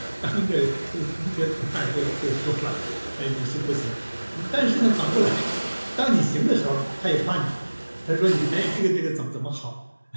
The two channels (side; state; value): both; inverted; correlation -1.00